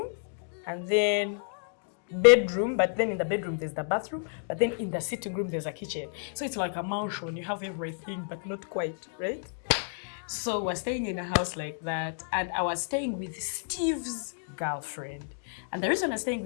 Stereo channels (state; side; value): silent; right; digital silence